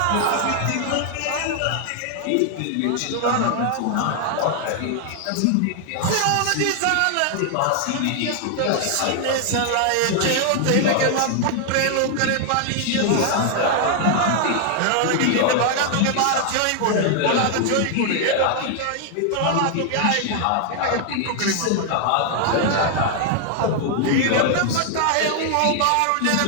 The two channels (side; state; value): both; different; correlation 0.00